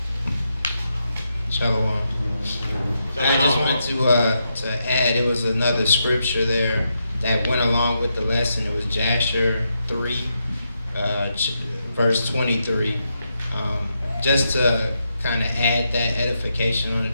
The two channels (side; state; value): both; inverted; correlation -0.83